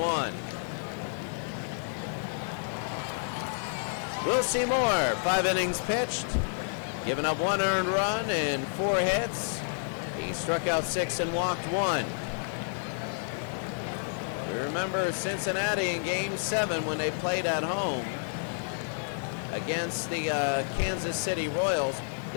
We'll see more. 5 innings pitched, giving up 1 earned run and 4 hits. He struck out 6 and walked 1. We remember Cincinnati in Game 7 when they played at home against the Kansas City Royals.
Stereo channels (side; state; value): right; silent; 58 dB below the other